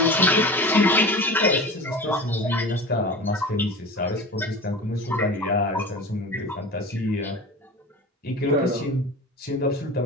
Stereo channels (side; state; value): both; normal; correlation 0.33